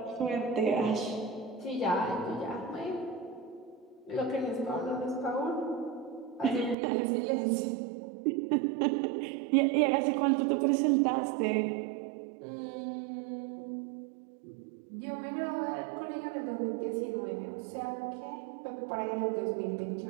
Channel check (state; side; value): drops out; left; at 6.8 s